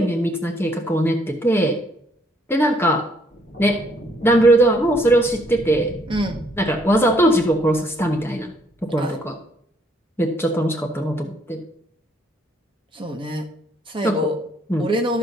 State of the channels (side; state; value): both; normal; correlation 0.67